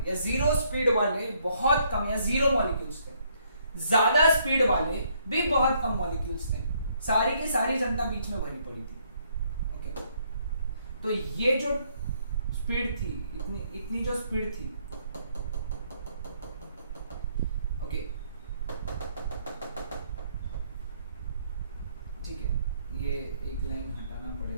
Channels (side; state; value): both; inverted; correlation -0.69